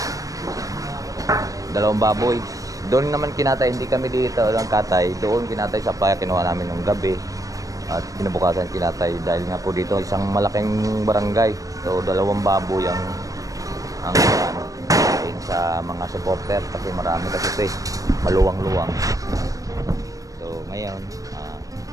2 baboy. Doon naman kinatay, hindi kami dito ng katay. Doon kinatay sa playa, kinuha namin ng gabi. At kinabukasan kinatay dahil nga po dito isang malaking barangay. So 2 baboy ang sa mga supporter kasi marami kasi ito maluwang-luwang. So ngayon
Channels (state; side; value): late; left; 0.16 ms